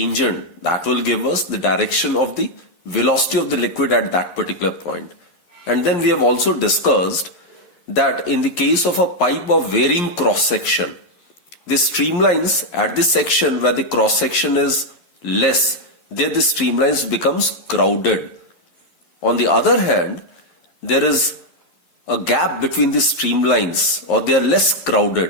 that will give us the direction of the velocity of the liquid at that particular point. And then we have also discussed that in the case of a pipe of varying cross section, the streamlines at the section where the cross section is less, there the streamlines becomes crowded. On the other hand, there is a gap between the streamlines, or they are less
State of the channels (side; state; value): right; late; 11 ms